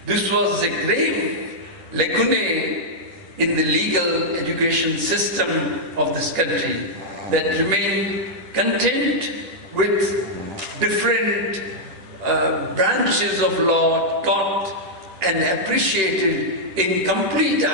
This was a grave lacuna in the legal education system of this country that remained content with different branches of law taught and appreciated in complete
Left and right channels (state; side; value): late; left; 10 ms